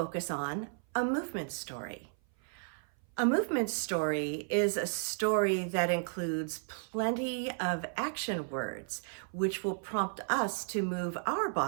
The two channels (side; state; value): left; silent; 55 dB below the other